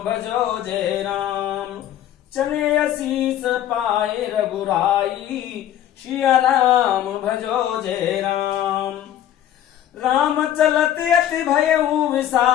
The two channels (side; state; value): right; quieter; 11.4 dB